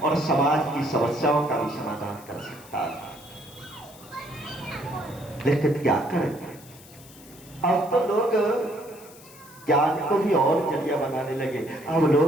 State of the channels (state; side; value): noise; left; hiss, 21 dB below the sound